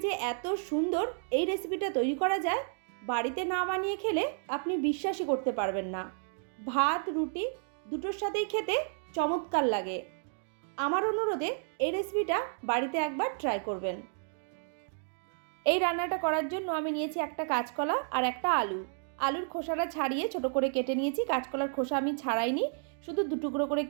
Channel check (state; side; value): silent; left; 55 dB below the other